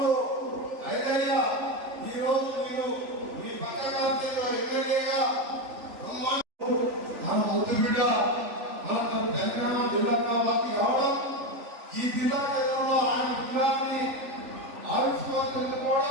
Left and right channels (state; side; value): late; left; 3.4 ms